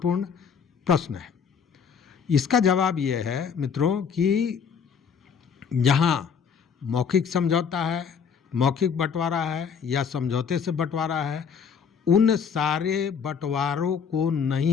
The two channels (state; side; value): quieter; right; 6.6 dB